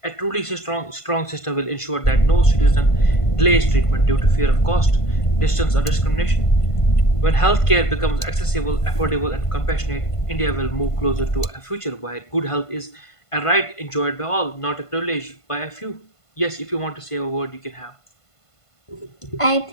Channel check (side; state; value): right; late; 1.5 ms